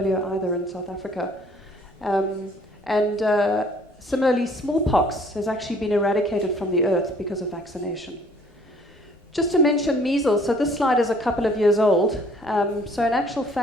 either in South Africa. Similarly, smallpox has actually been eradicated from the earth because of vaccination. Just to mention measles, so this slide is a couple of years old. So in actual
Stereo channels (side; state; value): both; normal; correlation 0.57